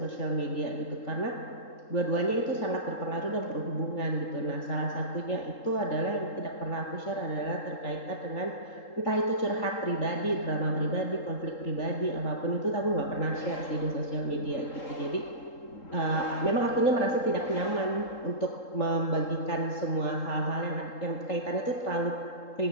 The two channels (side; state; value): right; late; 3.8 ms